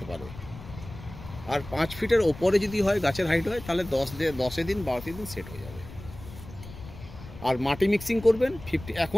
পারে। আর 5 ফিটের উপরে যদি হয় গাছের হাইট হয় তাহলে 10 দিন 12 দিন সেট হয়ে যাবে। আর মাটি মিক্সিং করবেন 50।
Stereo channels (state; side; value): noise; left; rumble, 15 dB below the sound